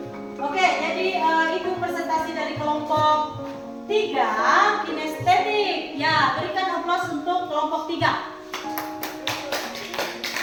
presentasi dari kelompok 3 kinestetik. Ya, berikan aplaus untuk kelompok 3.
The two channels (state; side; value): identical; both; correlation 1.00